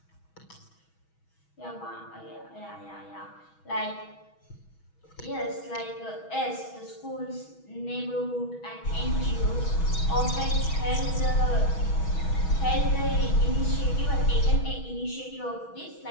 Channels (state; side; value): late; right; 6.2 ms